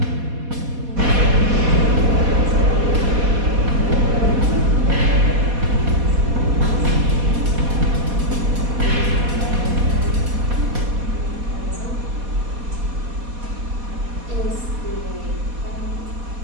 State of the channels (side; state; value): left; late; 4.2 ms